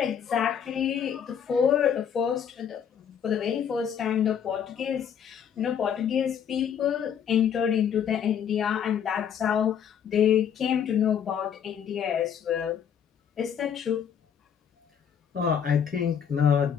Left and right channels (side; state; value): right; quieter; 8.2 dB